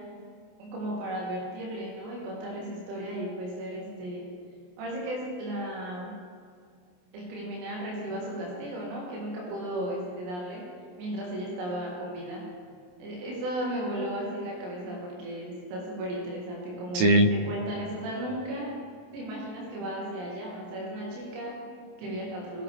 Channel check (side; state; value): left; late; 28 ms